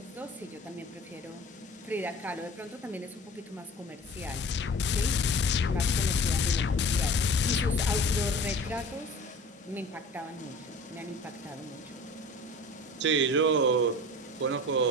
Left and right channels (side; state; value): both; normal; correlation 0.39